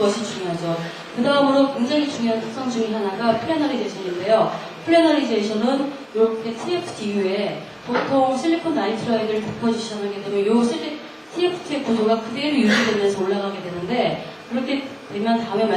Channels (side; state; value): both; identical; correlation 1.00